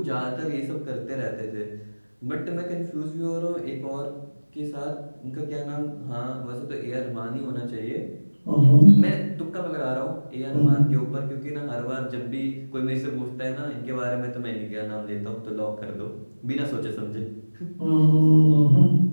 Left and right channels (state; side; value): inverted; both; correlation -1.00